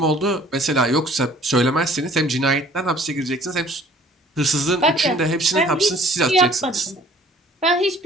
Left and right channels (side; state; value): both; normal; correlation 0.54